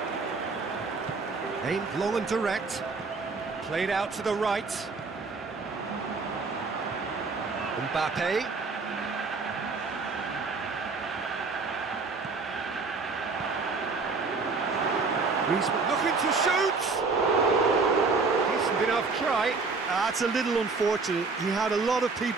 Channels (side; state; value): left; quieter; 4.2 dB